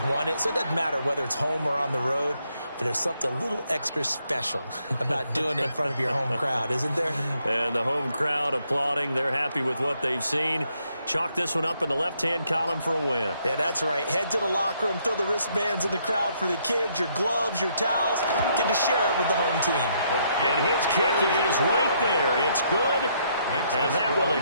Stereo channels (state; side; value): inverted; both; correlation -0.72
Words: won it. So it doesn't matter whether it's home or on the road, but there's something a little extra special about doing it in front of your home crowd, isn't there? And the home crowd applauding. They're happy with what they've seen. Chalk this one up in the left-hand column for a win. Yeah, that's right. Head to the locker room, throw the wristbands in the crowd for the kids, your gloves, your towels. Get to share it with the home team. And his kick is right there. It's good. And that will